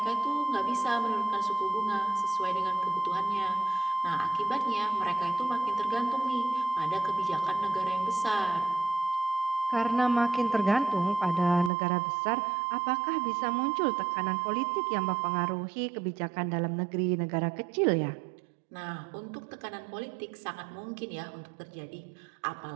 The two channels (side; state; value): left; drops out; at 11.7 s